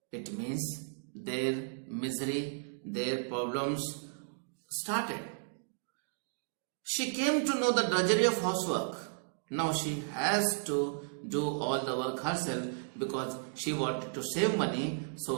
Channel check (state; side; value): silent; left; digital silence